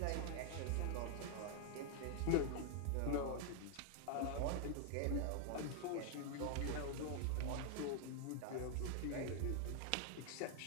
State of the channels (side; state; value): both; different; correlation 0.00